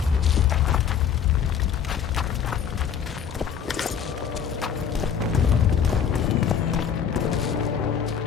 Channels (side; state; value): right; quieter; 7.7 dB